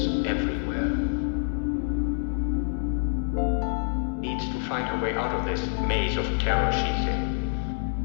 everywhere. Needs to find her way out of this maze of terror she's in.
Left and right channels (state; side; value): silent; right; digital silence